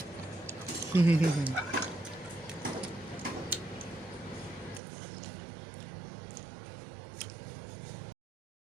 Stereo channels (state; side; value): drops out; left; at 4.8 s